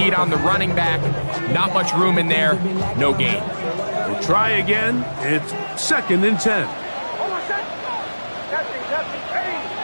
on the running back. Not much room in there. No gain. We'll try again. It's second and 10.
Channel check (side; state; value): both; inverted; correlation -1.00